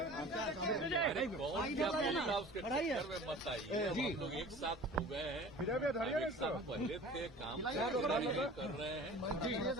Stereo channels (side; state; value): both; normal; correlation 0.42